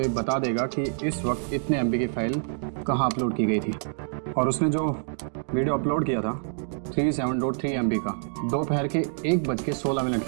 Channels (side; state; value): left; silent; digital silence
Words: बता देगा कि इस वक्त इतने MB की फाइल कहाँ अपलोड की गई थी, और उसने जो वीडियो अपलोड किया था 37.3 MB का दोपहर के 1:16